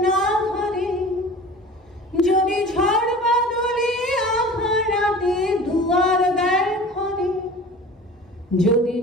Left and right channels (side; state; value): both; normal; correlation 0.40